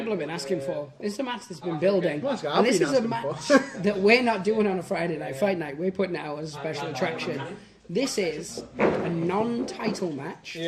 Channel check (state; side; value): identical; both; correlation 1.00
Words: have been asking for. This is a match that's been building. And this is a match that we're not doing on a Friday night fight night. We're putting it out as a special attraction. This is a non-title match.